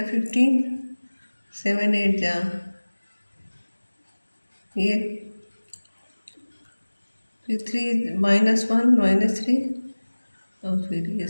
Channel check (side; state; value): both; inverted; correlation -1.00